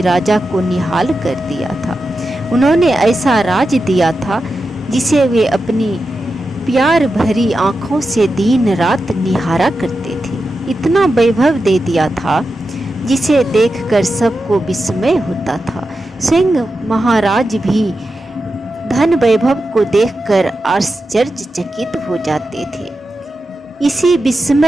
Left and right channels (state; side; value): normal; both; correlation 0.90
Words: को निहाल कर दिया था। उन्होंने ऐसा राज दिया था जिसे वे अपनी प्यार भरी आंखों से दिन रात निहारा करते थे। इतना वैभव दे दिया था जिसे देखकर सबको विस्मय होता था। स्वयं महाराज भी धन वैभव को देखकर आश्चर्यचकित हो जाते थे। इसी